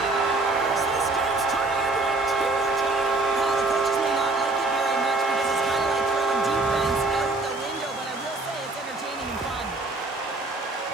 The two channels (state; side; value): quieter; left; 3.1 dB